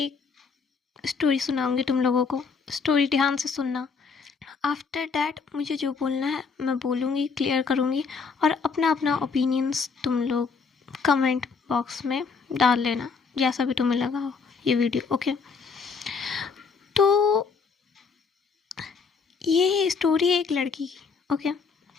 स्टोरी सुनाऊंगी तुम लोगों को। स्टोरी ध्यान से सुनना। आफ्टर डैट मुझे जो बोलना है मैं बोलूँगी, क्लियर करूँगी और अपना अपना ओपिनियंस तुम लोग कमेंट बॉक्स में डाल लेना, जैसा भी तुम्हें लगा हो ये वीडियो। ओके, तो ये स्टोरी है एक लड़की की। ओके,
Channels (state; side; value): quieter; right; 5.2 dB